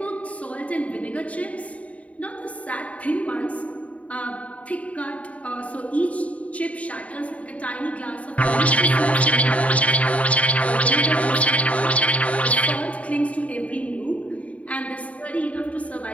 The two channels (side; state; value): right; late; 0.067 ms